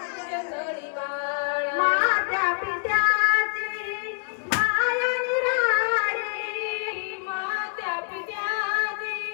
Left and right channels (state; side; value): quieter; right; 39.5 dB